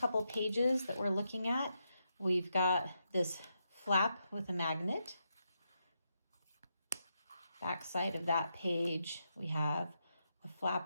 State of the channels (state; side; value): inverted; both; correlation -0.83